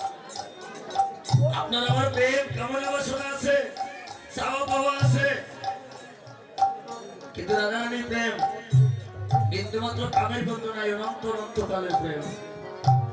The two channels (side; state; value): both; identical; correlation 1.00